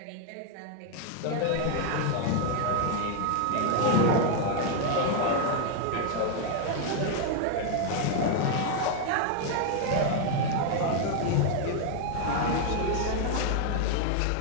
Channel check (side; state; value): both; different; correlation 0.00